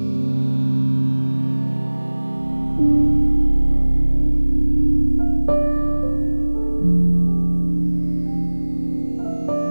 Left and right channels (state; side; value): inverted; both; correlation -1.00